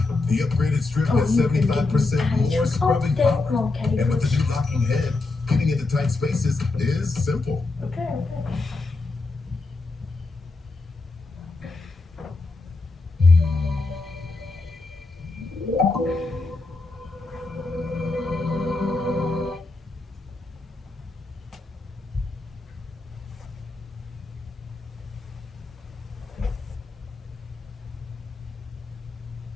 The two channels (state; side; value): quieter; right; 3.4 dB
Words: The upgraded strip has 75% more scrubbing power. And with the new locking head, getting into tight spaces is simple. Okay.